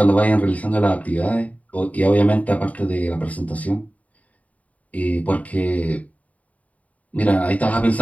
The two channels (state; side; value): late; right; 0.070 ms